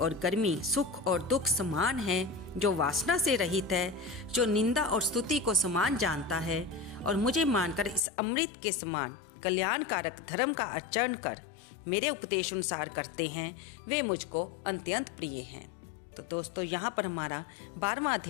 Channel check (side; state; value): right; drops out; at 8.0 s